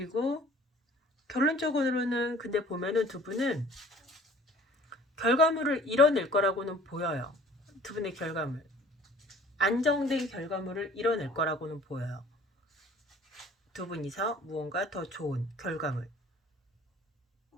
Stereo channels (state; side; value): normal; both; correlation 0.50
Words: 결론적으로는 근데 보면은 두 분은 결과물을 이뤄낼 거라고는 보여요. 두 분의 결과물. 안정된 결과물을 이뤄낼 거라고는 보여요. 두 분이서 무언가 더 좋은 결과물.